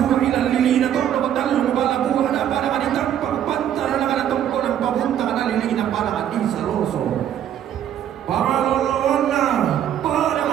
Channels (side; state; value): left; quieter; 10.3 dB